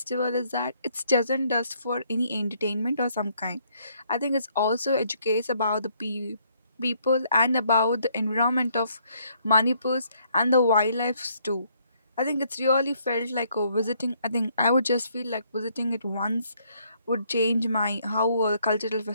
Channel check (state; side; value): inverted; both; correlation -0.68